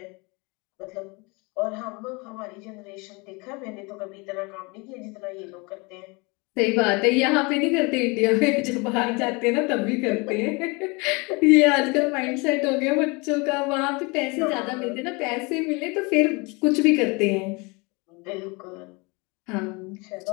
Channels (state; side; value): quieter; right; 27.9 dB